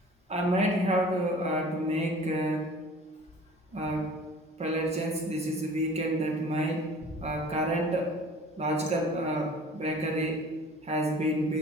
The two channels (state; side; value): normal; both; correlation 0.46